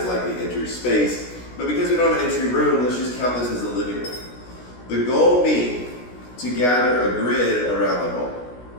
like the entry space. But because we don't have an entry room, let's just count this as the living room. The goal being to gather a grid around the home.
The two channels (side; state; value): right; late; 16 ms